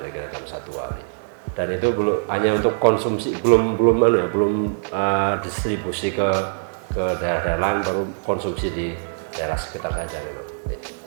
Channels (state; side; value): silent; left; digital silence